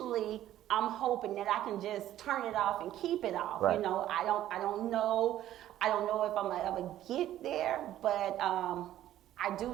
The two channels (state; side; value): quieter; left; 12.8 dB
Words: I'm hoping that I can just turn it off and keep it off. Right. I don't know if I'm gonna ever get there, but I do